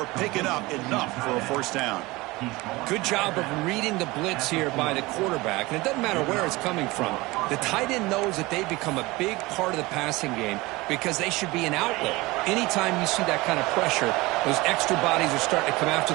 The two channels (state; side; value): quieter; left; 21.6 dB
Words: picking up enough for a 1st down. Good job of reading the blitz here by the quarterback, and it doesn't matter where it's coming from. The tight end knows that they've become a big part of the passing game because they should be an outlet. Anytime you see that kind of pressure, those extra bodies are starting to come after